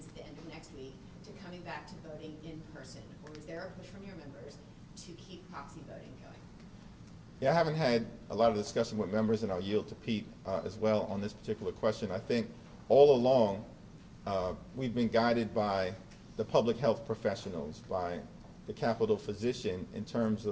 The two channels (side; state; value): both; identical; correlation 1.00